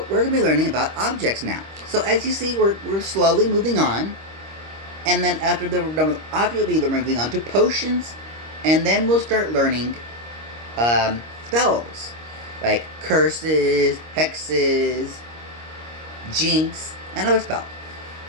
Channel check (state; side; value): late; left; 25 ms